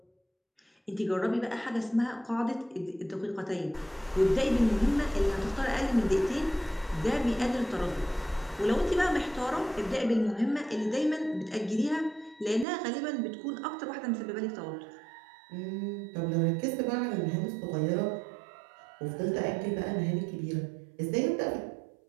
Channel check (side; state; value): left; drops out; at 12.7 s